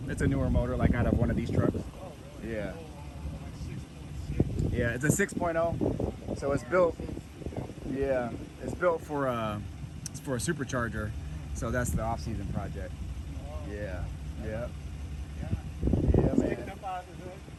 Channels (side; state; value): both; identical; correlation 1.00